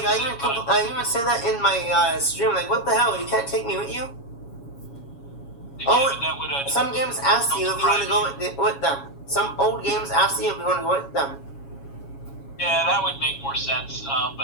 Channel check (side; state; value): right; late; 7.2 ms